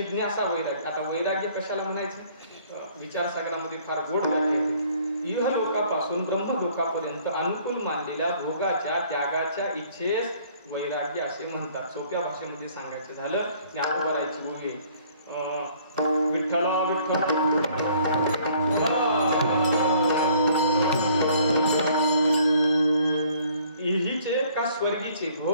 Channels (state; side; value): inverted; both; correlation -0.59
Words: वैराग्य. आता वैराग्य कशाला म्हणायचं? विचारसागरामध्ये फार गोड व्याख्या. इह लोकापासून ब्रह्म लोकापर्यंत अनुकूल मानलेल्या भोगाच्या त्यागाच्या इच्छेस वैराग्य असे म्हणतात. सोप्या भाषेमध्ये सांगायचं झालं, ज्ञानोबरायची ओवी, विठ्ठला इहीचे का स्वर्गीचे